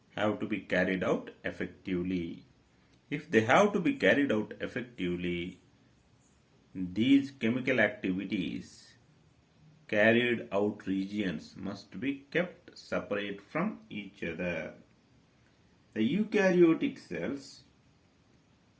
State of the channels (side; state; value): both; identical; correlation 1.00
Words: have to be carried out effectively. If they have to be carried out effectively, these chemical activities carried out regions must be kept separate from each other. The eukaryotic cells,